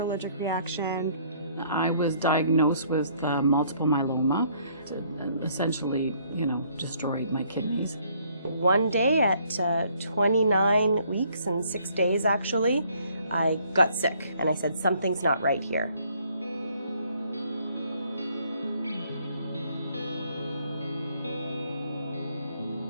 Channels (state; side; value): inverted; both; correlation -0.64